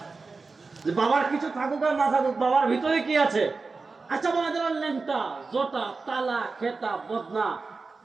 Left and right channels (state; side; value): quieter; left; 4.1 dB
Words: বাবার কিছু থাকুক আর না থাকুক, বাবার ভিতরে কি আছে? আচ্ছা বলা যারা লেংটা, জোটা, তালা, খেতা, বদনা,